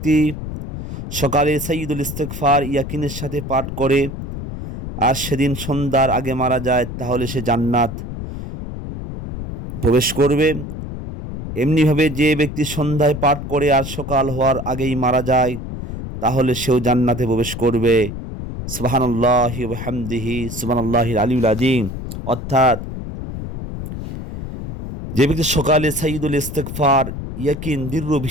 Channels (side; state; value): left; noise; rumble, 8 dB below the sound